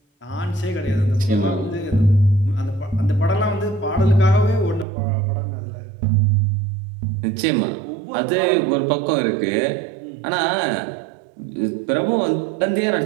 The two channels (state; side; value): drops out; left; at 4.9 s